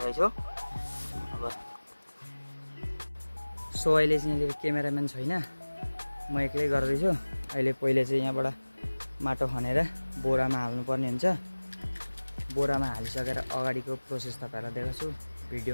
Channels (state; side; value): inverted; both; correlation -1.00